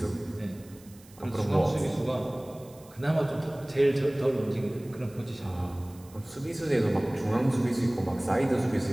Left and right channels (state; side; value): noise; right; hiss, 25 dB below the sound